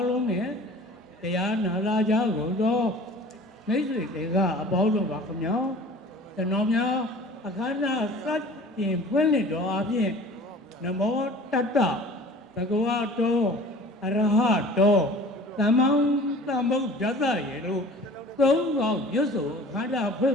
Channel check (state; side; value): normal; both; correlation 0.44